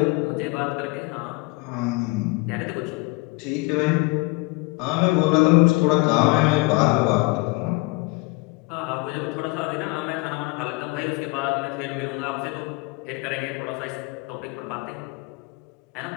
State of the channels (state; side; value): quieter; right; 25.6 dB